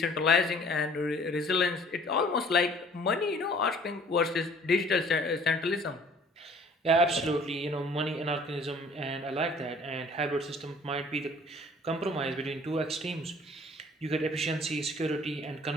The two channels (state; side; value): normal; both; correlation 0.53